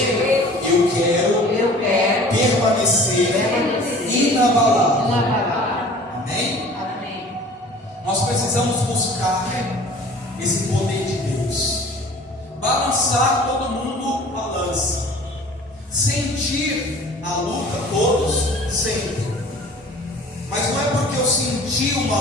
eu quero permanecer inabalável. Amém? Amém. Nós precisamos buscar esse poder de Deus, balançar, todo mundo balança, sentir a luta, todos sentem, mas não é porque eu senti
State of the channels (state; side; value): normal; both; correlation 0.46